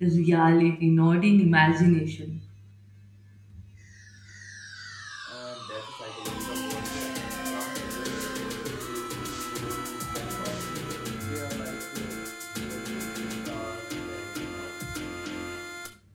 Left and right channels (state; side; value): identical; both; correlation 1.00